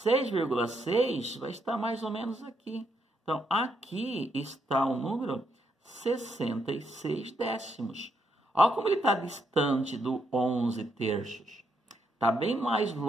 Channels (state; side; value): normal; both; correlation 0.77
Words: vai estar mais ou menos aqui. Então, aqui está o número 66 décimos. Olha como ele está distante do 11 terços. Está bem mais